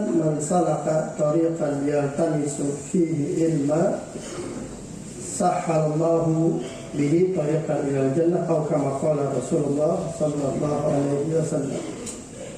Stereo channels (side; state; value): both; identical; correlation 1.00